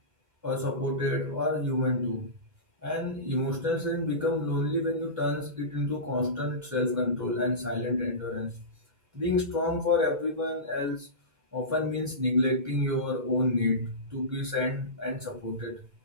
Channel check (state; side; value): late; left; 2.1 ms